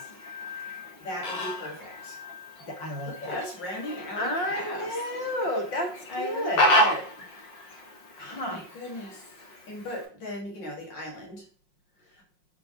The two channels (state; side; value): late; right; 5.5 ms